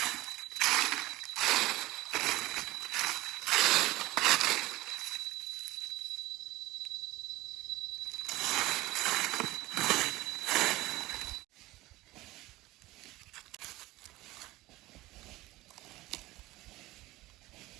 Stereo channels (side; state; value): left; quieter; 18.6 dB